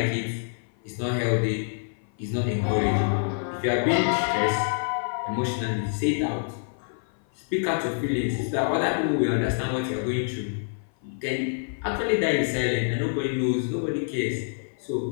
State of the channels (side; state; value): right; silent; 55 dB below the other